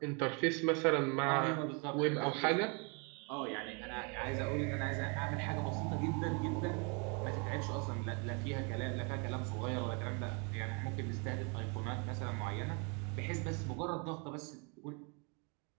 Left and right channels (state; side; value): quieter; left; 33.7 dB